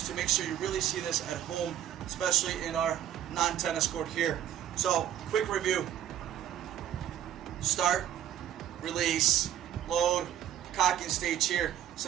to make sure you really see this at home, especially in our non-tennis court here. So, quick review: start, release, load, cocking stage here.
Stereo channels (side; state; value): left; quieter; 10.9 dB